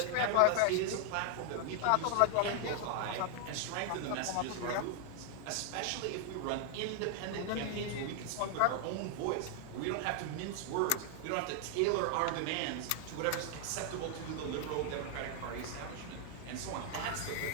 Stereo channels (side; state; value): both; different; correlation 0.00